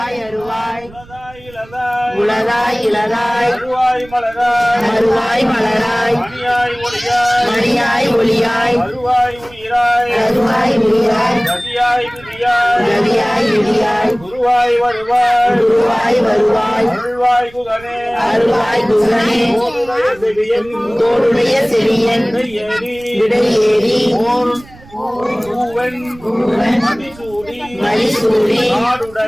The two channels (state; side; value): noise; right; rumble, 22 dB below the sound